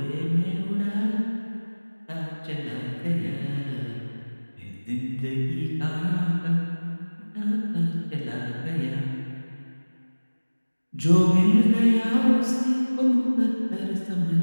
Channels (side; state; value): both; inverted; correlation -1.00